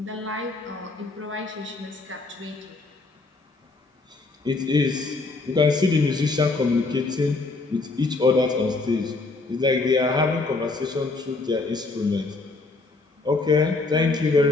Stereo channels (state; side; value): quieter; right; 3.5 dB